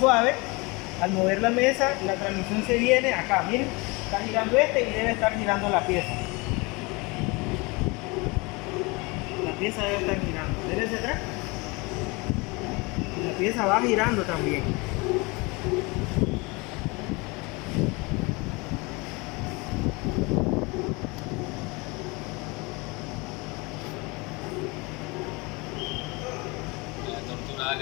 Al mover la mesa, la transmisión se viene acá, miren, está girando este y debe estar girando la pieza. La pieza debe estar girando. Dele hacia atrás. Y la pieza va girando también. La tortura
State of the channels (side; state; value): right; quieter; 26.5 dB